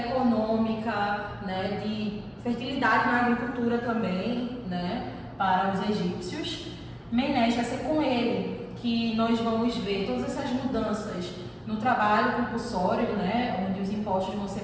né, de fertilidade na agricultura também, né, para os egípcios. Menes vai ser com ele que nós vamos ver todas essas mudanças no trabalho compulsório, né, onde os impostos vão ser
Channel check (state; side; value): identical; both; correlation 1.00